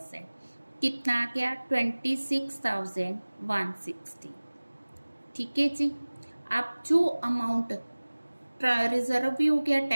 कितना आ गया, 26,160, ठीक है जी। अब जो अमाउंट रिजर्व भी हो गया,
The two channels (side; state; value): both; inverted; correlation -1.00